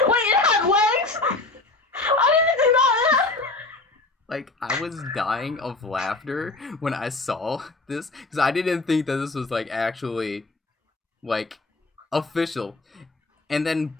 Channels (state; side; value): quieter; right; 3.2 dB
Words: had legs? I didn't think that. Like, I was dying of laughter when I saw this, because I didn't think that this was, like, actually, like, official. And then,